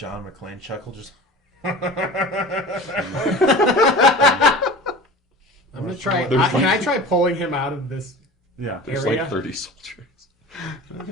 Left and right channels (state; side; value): normal; both; correlation 0.37